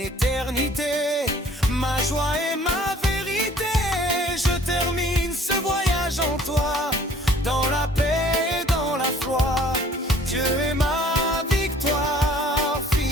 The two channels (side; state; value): both; normal; correlation 0.54